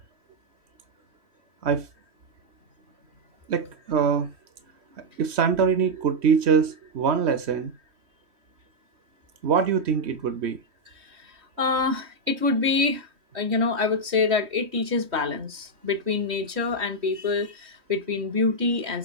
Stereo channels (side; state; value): left; late; 3.1 ms